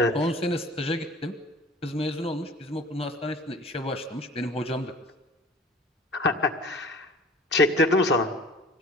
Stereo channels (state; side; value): normal; both; correlation 0.45